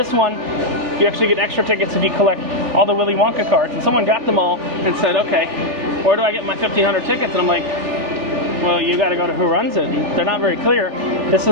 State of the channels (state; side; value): late; right; 1.6 ms